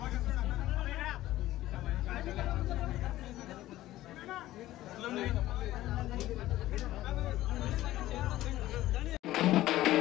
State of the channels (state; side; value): quieter; right; 15.3 dB